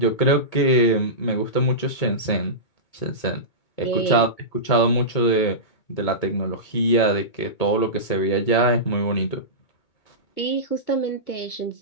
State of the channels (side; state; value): right; late; 2.2 ms